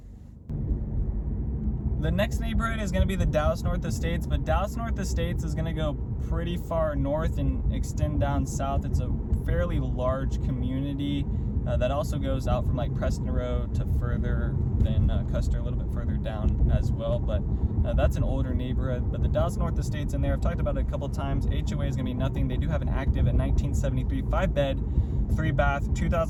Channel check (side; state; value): both; identical; correlation 1.00